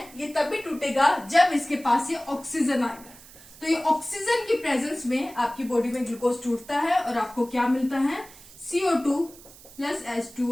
ये तभी टूटेगा जब इसके पास ये ऑक्सीजन आएगा। तो ये ऑक्सीजन की प्रेजेंस में आपकी बॉडी में ग्लूकोज टूटता है, और आपको क्या मिलता है, CO2 प्लस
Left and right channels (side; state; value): right; noise; hiss, 21 dB below the sound